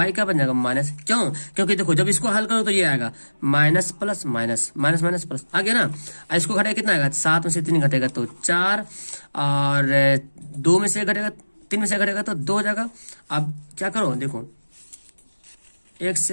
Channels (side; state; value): both; inverted; correlation -1.00